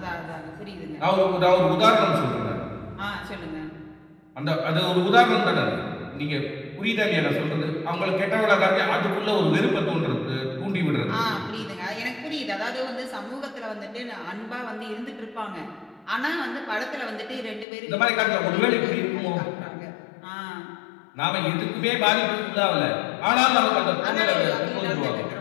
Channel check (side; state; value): right; drops out; at 17.7 s